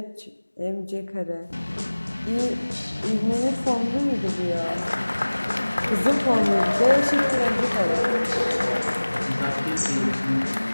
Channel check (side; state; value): both; inverted; correlation -1.00